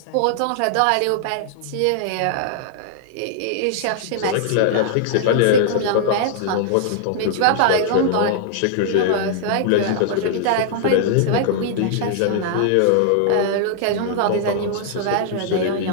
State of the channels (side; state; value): both; different; correlation -0.01